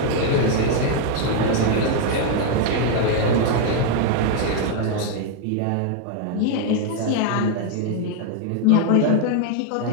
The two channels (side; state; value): both; different; correlation 0.00